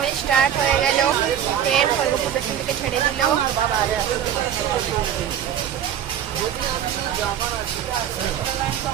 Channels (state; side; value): quieter; left; 9.8 dB